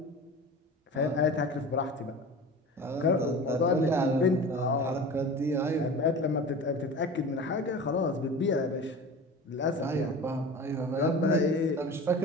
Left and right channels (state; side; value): normal; both; correlation 0.35